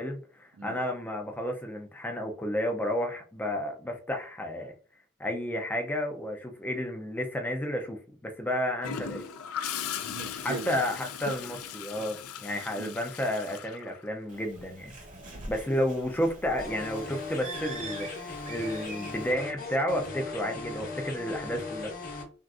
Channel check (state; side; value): normal; both; correlation 0.57